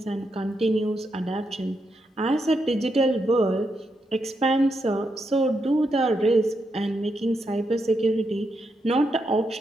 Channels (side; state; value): both; normal; correlation 0.82